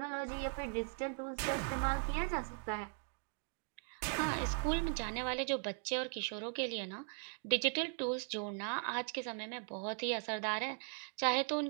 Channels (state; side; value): silent; left; 52 dB below the other